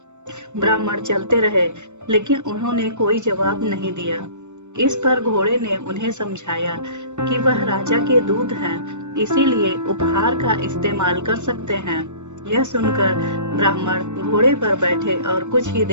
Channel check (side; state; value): left; late; 0.84 ms